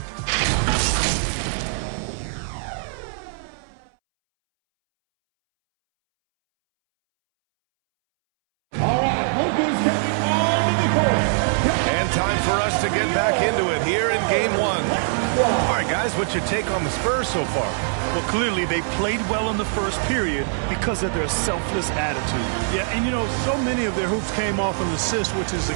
stepping on the court. And time for us to get back into it here in game one. All right, guys, what's your take on the Spurs so far? Well, clearly they played well in the first period because of their selfless attitude. Yeah, and you know, so many of their hoops came off an assist, which is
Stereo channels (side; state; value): left; silent; 64 dB below the other